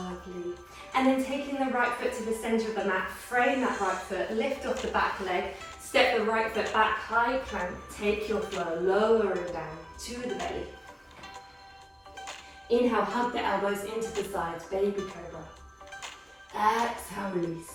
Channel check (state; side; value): identical; both; correlation 1.00